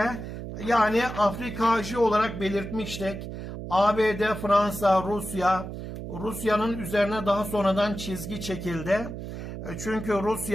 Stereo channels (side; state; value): right; noise; hum, 8 dB below the sound